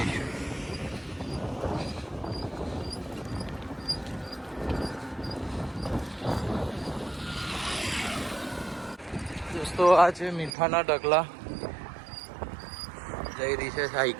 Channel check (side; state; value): left; drops out; at 10.5 s